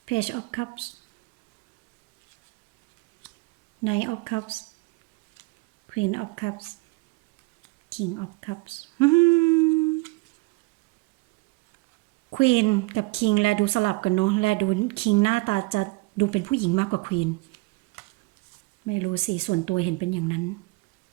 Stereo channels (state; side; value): quieter; left; 25.7 dB